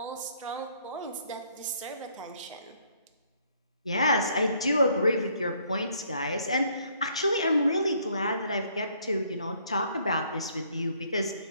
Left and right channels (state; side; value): inverted; both; correlation -0.65